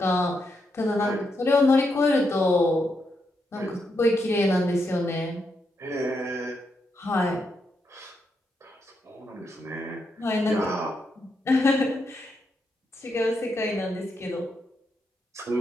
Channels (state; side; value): normal; both; correlation 0.82